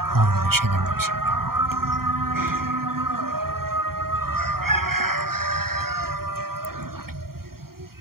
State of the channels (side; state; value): left; late; 0.93 ms